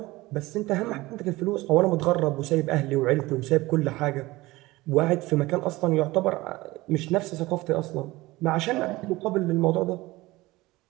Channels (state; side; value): quieter; left; 19.9 dB